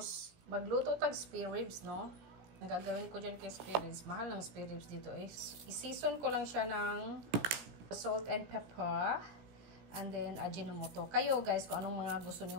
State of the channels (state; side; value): late; left; 17 ms